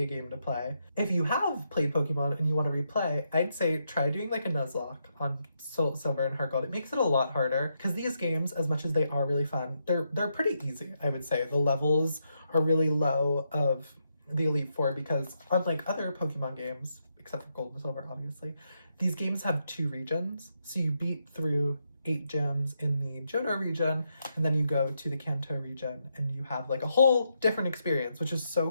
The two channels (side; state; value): both; inverted; correlation -0.81